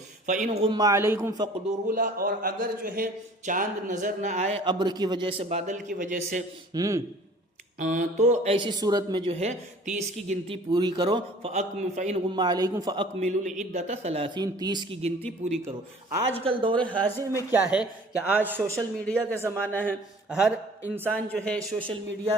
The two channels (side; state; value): both; normal; correlation 0.49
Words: فإن غم علیکم فاقدروا لہ، اور اگر جو ہے چاند نظر نہ آئے ابر کی وجہ سے، بادل کی وجہ سے، تو ایسی صورت میں جو ہے 30 کی گنتی پوری کرو۔ فَإِنْ غُمَّ عَلَيْكُمْ فَأَكْمِلُوا الْعِدَّةَ 30، 30 کی گنتی پوری کرو۔ آج کل دور حاضر میں کیا ہے کہ آج سوشل میڈیا کا زمانہ ہے، ہر انسان جو ہے سوشل